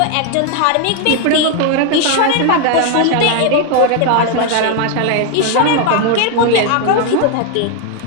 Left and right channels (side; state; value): both; different; correlation 0.01